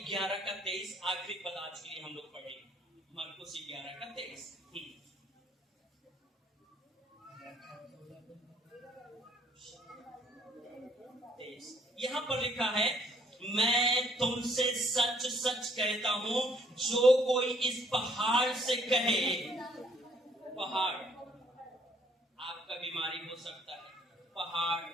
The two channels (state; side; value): normal; both; correlation 0.64